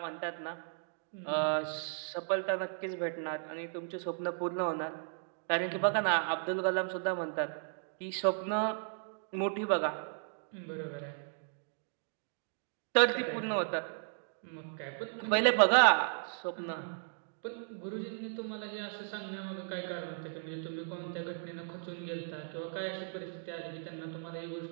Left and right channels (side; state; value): left; silent; digital silence